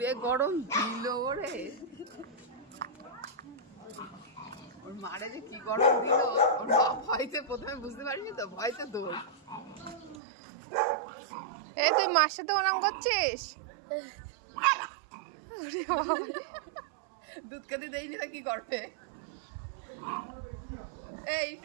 গরম দিল ওরে। ওর মারে যে কি গরম দিল, ওর মা ভয়তে প্রথমে বুঝতে পারিনি তো, ভয়তে দৌড়। এই তুই মার সাথে ওরম করছিস? দুধ খেতে দেয়নি তো কি করবে? এই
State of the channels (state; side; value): drops out; left; at 10.2 s